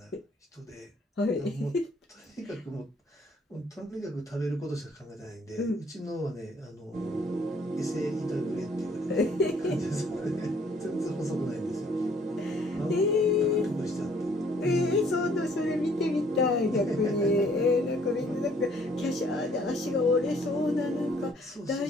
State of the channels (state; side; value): normal; both; correlation 0.62